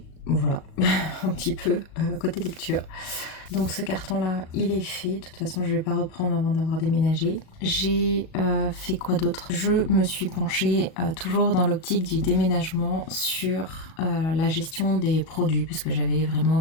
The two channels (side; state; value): right; late; 37 ms